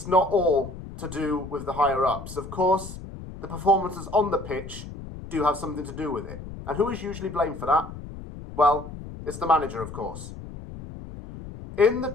not all to do with the higher-ups. Of course, the performances on the pitch do have something to do with it. And who is usually blamed for that? Well, it's the manager, of course. In the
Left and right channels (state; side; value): noise; left; rumble, 12 dB below the sound